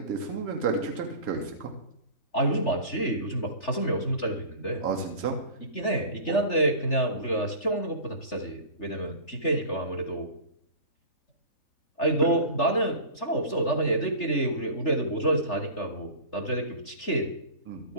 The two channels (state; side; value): late; right; 3.4 ms